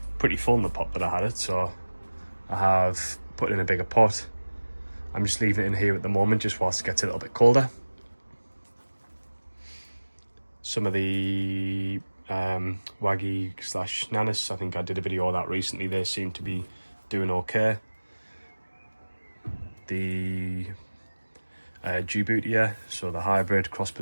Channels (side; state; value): both; inverted; correlation -1.00